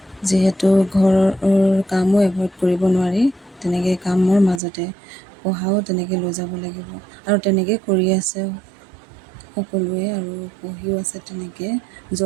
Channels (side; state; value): left; drops out; at 4.6 s